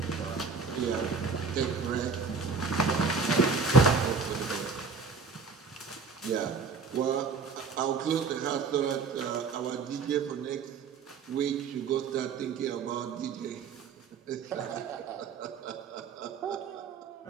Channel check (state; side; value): quieter; left; 5.0 dB